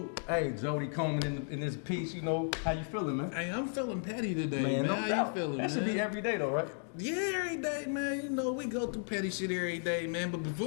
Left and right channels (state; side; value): silent; right; 55 dB below the other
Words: Hey, Jody Coleman in this piece. You know, how you feeling, man? Hey, I'm feeling petty today, man. No How doubt. you feeling, that man? should be every day, though, right? Yeah, every day, man. You know, we go through petty shit every day, man. But